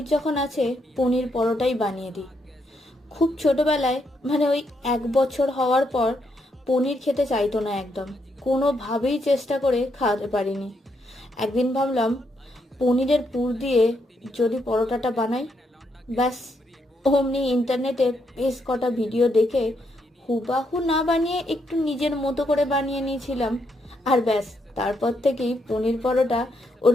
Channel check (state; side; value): normal; both; correlation 0.77